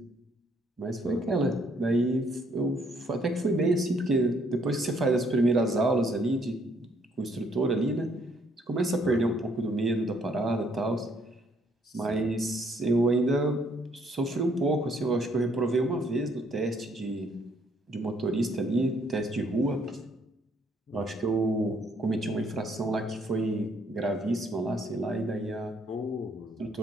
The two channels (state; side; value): normal; both; correlation 0.67